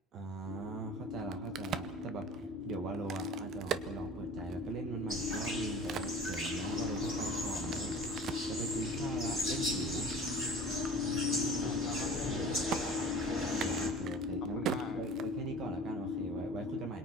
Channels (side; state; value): both; normal; correlation 0.42